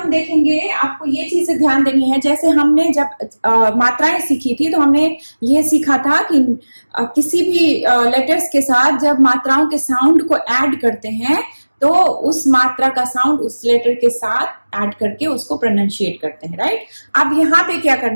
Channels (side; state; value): both; inverted; correlation -1.00